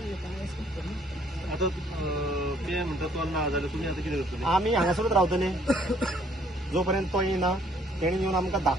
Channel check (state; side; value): normal; both; correlation 0.63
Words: आता ते म्हणतात तो ना जाल्यार तुम्ही आता कितें करतले? आमी हांगासरूच रावतले जोपर्यंत तो येना. तेणी येवन आमकां